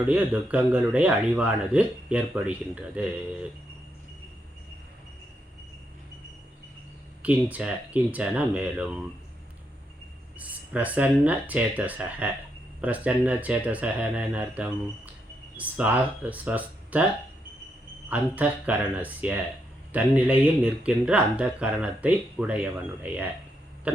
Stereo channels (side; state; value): both; normal; correlation 0.80